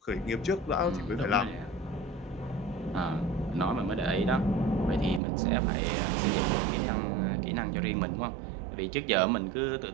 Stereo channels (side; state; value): left; drops out; at 5.2 s